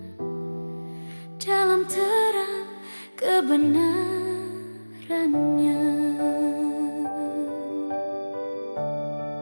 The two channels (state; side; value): inverted; both; correlation -1.00